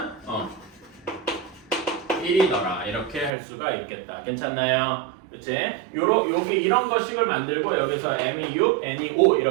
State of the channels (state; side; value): drops out; left; at 3.3 s